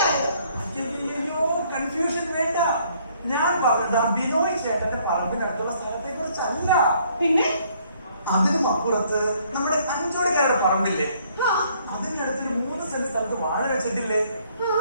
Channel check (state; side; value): inverted; both; correlation -0.64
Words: അയ്യോ, കൺഫ്യൂഷൻ വേണ്ട. ഞാൻ പറഞ്ഞത് ബിനോയ് ചേട്ടന്റെ പറമ്പിനടുത്തുള്ള സ്ഥലത്തെ കുറിച്ചല്ല. പിന്നെ അതിനും അപ്പുറത്ത് നമ്മുടെ അഞ്ചോടിക്കാരുടെ പറമ്പില്ലേ, അതിന്റെ അടുത്തൊരു 3 സെന്റ് സ്ഥലത്ത് വാഴ വെച്ചിട്ടില്ലേ,